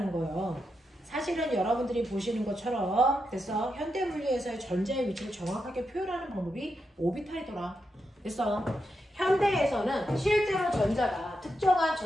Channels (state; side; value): normal; both; correlation 0.85